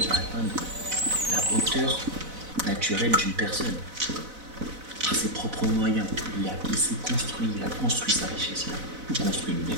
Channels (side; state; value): left; late; 4.0 ms